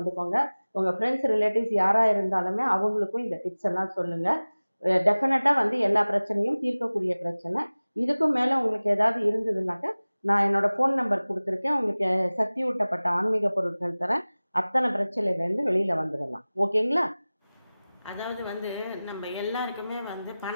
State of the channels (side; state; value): both; inverted; correlation -0.99